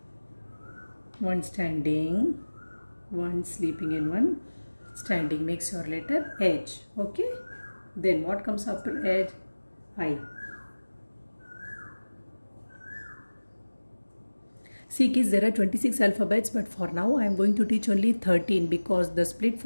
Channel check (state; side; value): inverted; both; correlation -1.00